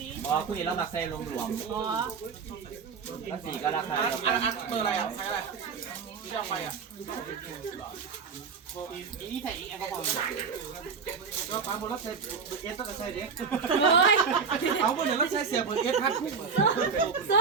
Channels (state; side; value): quieter; left; 5.6 dB